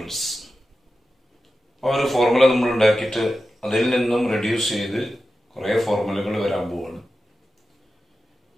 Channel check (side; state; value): both; normal; correlation 0.92